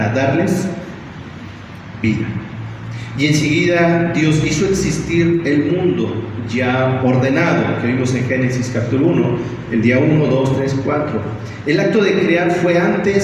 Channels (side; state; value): both; identical; correlation 1.00